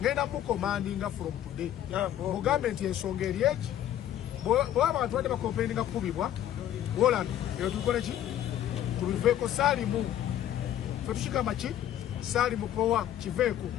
ngenda mu commanding from today mu government ensonga eri eki bo abantu bade bakompeni kubibwa wola yo tukole ki tuliveko salimu fetushika machi salimu powa kiveko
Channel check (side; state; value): right; quieter; 11.5 dB